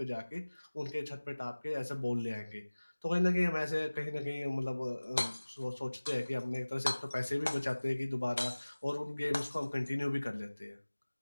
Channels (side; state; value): both; inverted; correlation -1.00